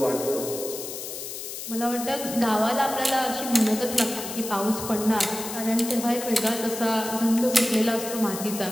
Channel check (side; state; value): left; noise; hiss, 8 dB below the sound